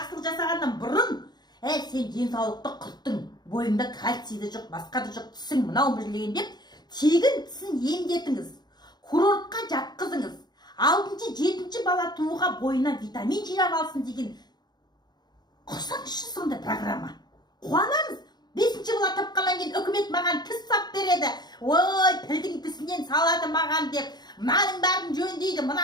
жасағаннан бұрын, сен денсаулықты құрттың, бойыңда кальцийді жоқ, басқа да жоқ, тісің мынау білген деп, тегін тісін емдетіңіз, курортқа жатқызыңыз. 6-7 бесінші бала тууға бойына витамин жинап алсын деген құрсаңызшы сондай программа. Қуанамыз. Бесінші бала тапқаннан кейін үкімет маған тіс сап береді. Ой, пілдің тісінен салады маған деп, мынаның бәрін жөндейді,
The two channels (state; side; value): late; right; 0.20 ms